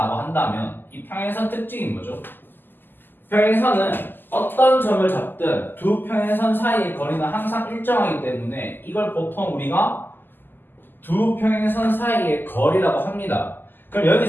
한다면 이 평행선 특징이 뭐죠? 평행선은 어떤 점을 잡든 두 평행선 사이의 거리는 항상 일정하기 때문에 이걸 보통 우리가 두 평행선 사이의 거리라고 합니다. 그럼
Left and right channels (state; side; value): late; right; 0.092 ms